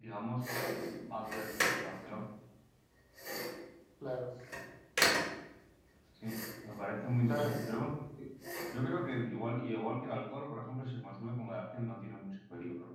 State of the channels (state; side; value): identical; both; correlation 1.00